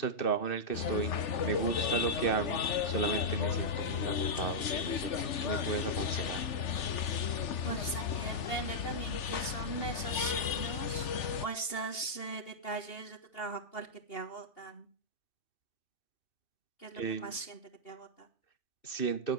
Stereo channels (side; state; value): right; late; 2.8 ms